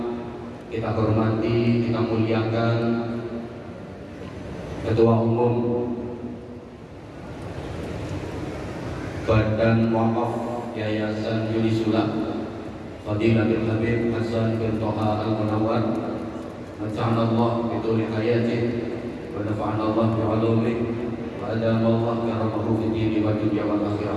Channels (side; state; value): both; identical; correlation 1.00